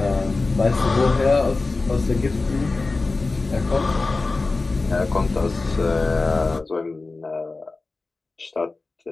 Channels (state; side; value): quieter; right; 3.6 dB